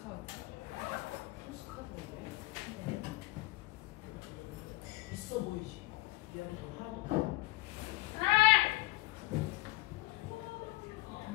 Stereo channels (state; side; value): quieter; right; 21.4 dB